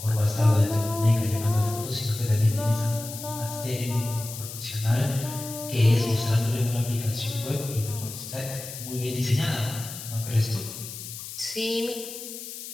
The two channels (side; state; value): left; noise; hiss, 10 dB below the sound